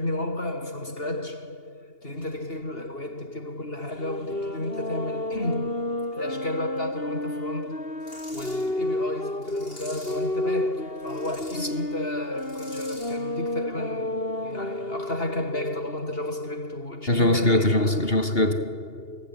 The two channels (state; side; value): late; right; 2.8 ms